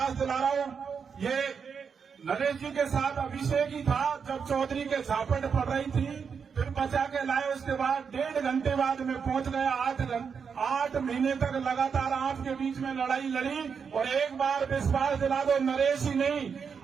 दिला रहा हूँ, ये नरेश जी के साथ अभिषेक ही था जब चौधरी के झापट पड़ रही थी, फिर बचा के लाए, उसके बाद 1.5 घंटे बाद में पहुंच गया। 8 महीने तक लगातार आपके बीच में लड़ाई लड़ी, और एक बार विश्वास दिला दो, नरेश ही नहीं,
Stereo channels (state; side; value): quieter; left; 6.3 dB